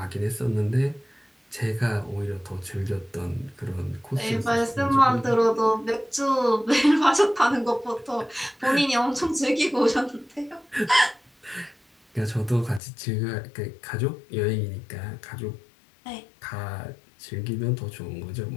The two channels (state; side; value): drops out; right; at 12.8 s